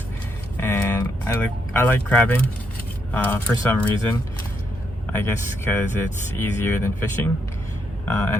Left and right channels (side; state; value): both; normal; correlation 0.78